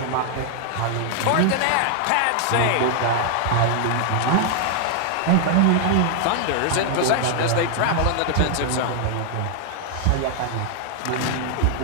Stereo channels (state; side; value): different; both; correlation 0.00